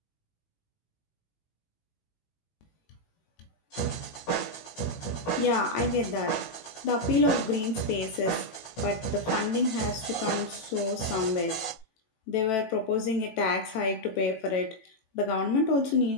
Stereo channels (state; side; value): late; right; 18 ms